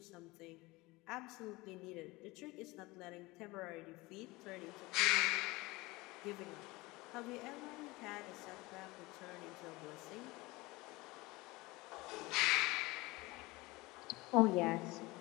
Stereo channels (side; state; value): right; quieter; 21.9 dB